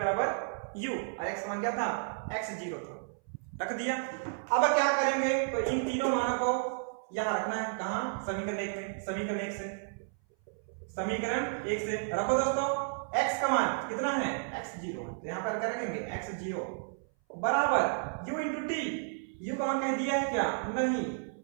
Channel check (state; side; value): silent; left; 56 dB below the other